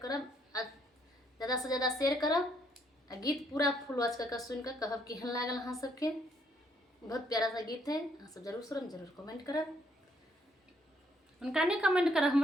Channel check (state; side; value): normal; both; correlation 0.70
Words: ज्यादा से ज्यादा शेयर करब, आ गीत पूरा फुल वॉच करके सुन के कहब केहन लागल अहाँ सबके। बहुत प्यारा सा गीत है, अहाँ सब जरूर सुनब, जरूर कमेंट करब। उनका नहीं कमेंट कर,